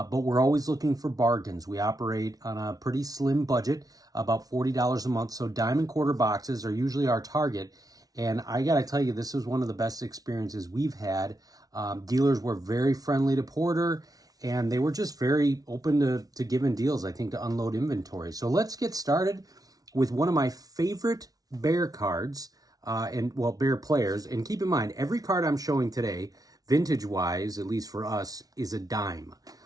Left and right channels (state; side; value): late; left; 0.18 ms